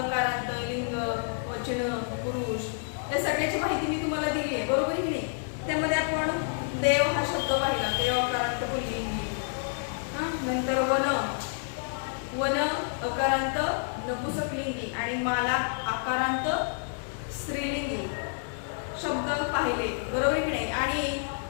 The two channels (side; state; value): right; silent; digital silence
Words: कारांत, लिंग, वचन, पुरुष या सगळ्याची माहिती मी तुम्हाला दिली आहे, बरोबर की नाही. त्यामध्ये आपण देव हा शब्द पाहिला, देव अकारांत पुल्लिंगी. नंतर वन, वन अकारांत नपुंसकलिंगी आणि माला आकारांत स्त्रीलिंगी शब्द पाहिले, बरोबर की नाही. आणि